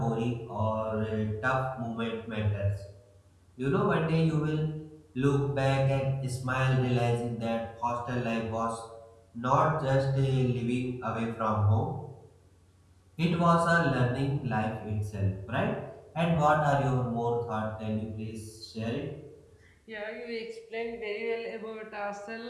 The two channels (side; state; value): both; identical; correlation 1.00